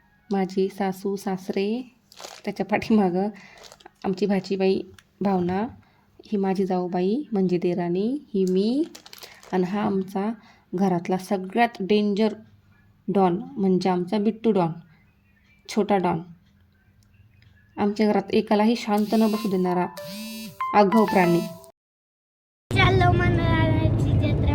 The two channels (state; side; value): identical; both; correlation 1.00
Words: माझी सासू सासरे, त्याच्या पाठीमागं आमची भाचीबाई भावना, ही माझी जाऊबाई म्हणजे देराणी, ही मी, आणि हा आमचा घरातला सगळ्यात डेंजर डॉन म्हणजे आमचा बिट्टू डॉन, छोटा डॉन. आमच्या घरात एकालाही शांत न बसू देणारा आगाऊ प्राणी.